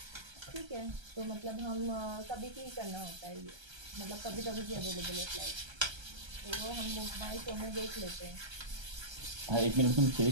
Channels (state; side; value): late; left; 1.3 ms